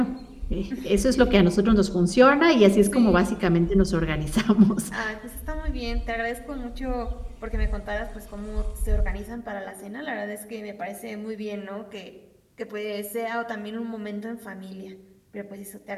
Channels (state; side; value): identical; both; correlation 1.00